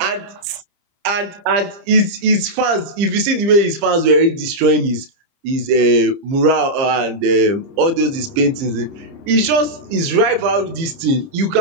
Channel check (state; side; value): late; left; 30 ms